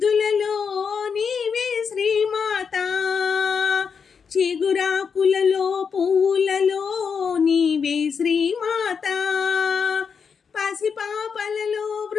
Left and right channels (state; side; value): quieter; right; 6.2 dB